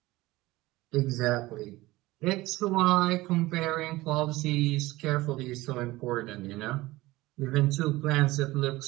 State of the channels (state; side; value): quieter; left; 19.2 dB